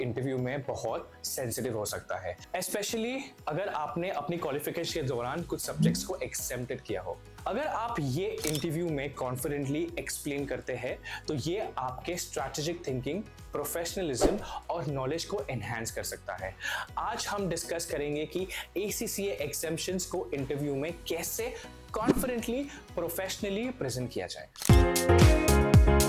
interview में बहुत सेंसिटिव हो सकता है, स्पेशली अगर आपने अपनी क्वालिफिकेशन के दौरान कुछ सब्जेक्ट्स को एग्जेम्प्टेड किया हो। अगर आप ये इंटरव्यू में कॉन्फिडेंटली एक्सप्लेन करते हैं तो ये आपके स्ट्रैटेजिक थिंकिंग, प्रोफेशनलिज्म और नॉलेज को एनहांस कर सकता है। आज हम डिस्कस करेंगे कि ACCA एग्जाम्शंस को इंटरव्यू में कैसे कॉन्फिडेंटली, प्रोफेशनली प्रेजेंट किया जाए।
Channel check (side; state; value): both; identical; correlation 1.00